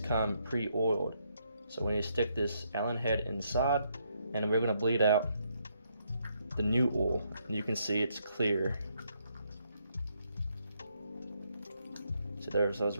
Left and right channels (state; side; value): inverted; both; correlation -0.75